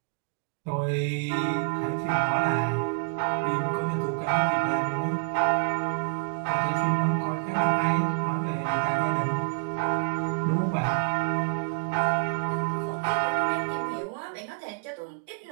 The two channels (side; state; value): left; quieter; 35.0 dB